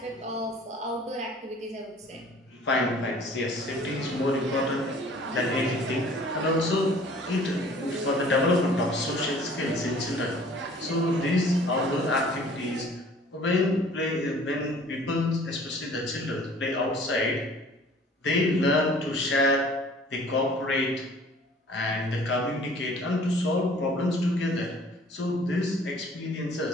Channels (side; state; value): both; normal; correlation 0.51